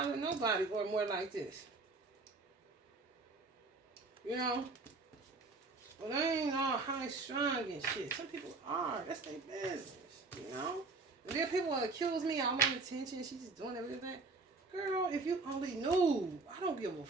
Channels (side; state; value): left; quieter; 3.7 dB